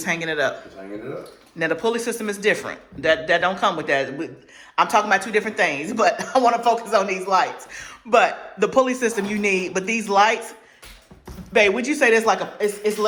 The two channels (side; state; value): both; identical; correlation 1.00